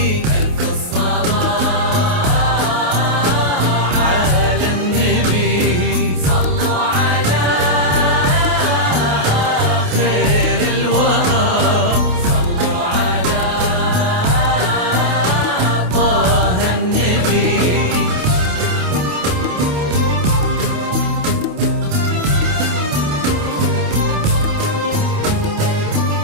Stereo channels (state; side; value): late; left; 28 ms